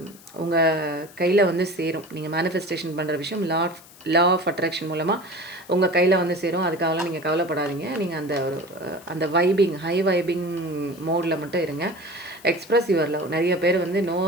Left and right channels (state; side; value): noise; left; hiss, 22 dB below the sound